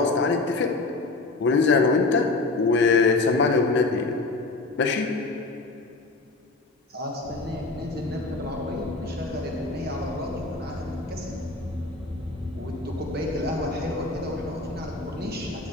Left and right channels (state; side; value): quieter; right; 3.4 dB